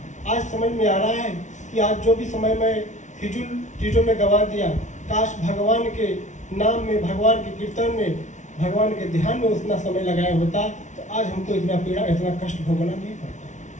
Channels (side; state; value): right; late; 0.35 ms